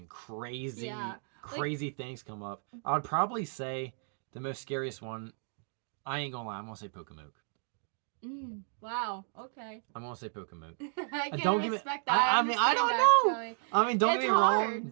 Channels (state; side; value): silent; left; 56 dB below the other